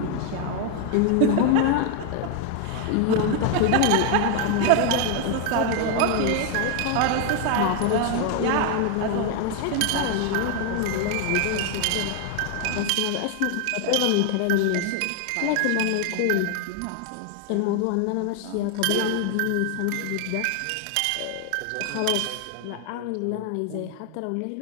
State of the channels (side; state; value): both; different; correlation 0.01